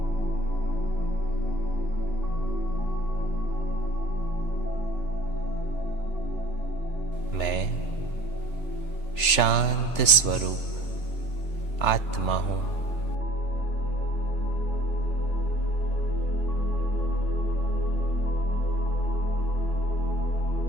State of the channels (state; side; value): late; right; 3.4 ms